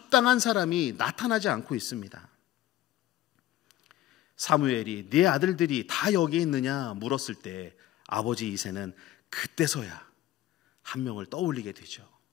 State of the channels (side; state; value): right; quieter; 14.1 dB